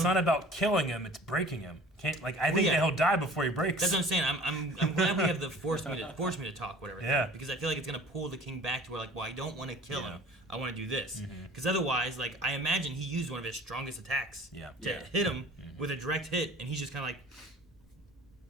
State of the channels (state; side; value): normal; both; correlation 0.47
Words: not about killing him; it's breaking him. I think yeah. that he'll die before he breaks. That's what I'm saying. I'm glad we have the force me to talk, whatever. Yeah. Thing, because I feel like it's gonna pull the king back to where like, well, I don't want to kill Yeah. him. I want to do this. Mm-hmm. Because otherwise, like, I imagine he used one of his strongest attacks Yeah. to Yeah. hit him with a direct hit, and he's just kind of